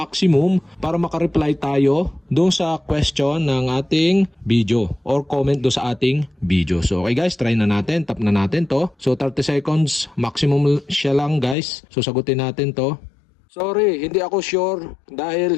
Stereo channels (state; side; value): drops out; right; at 11.6 s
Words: para makareply tayo doon sa question ng ating video or comment doon sa ating video. So okay guys, try na natin. Tap na natin to. So 30 seconds maximum siya lang guys. So sagutin natin to. Sorry, hindi ako sure